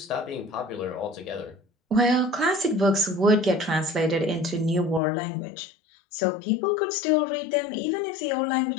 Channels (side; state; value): right; drops out; at 5.0 s